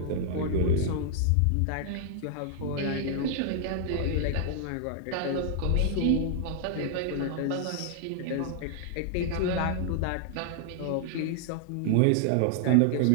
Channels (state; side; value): different; both; correlation -0.01